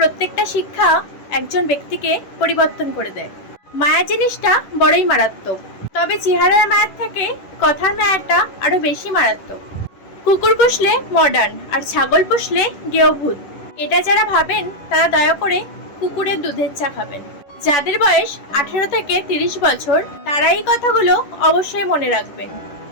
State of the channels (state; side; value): late; right; 11 ms